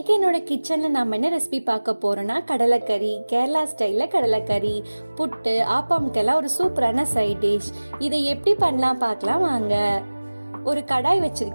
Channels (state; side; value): inverted; both; correlation -1.00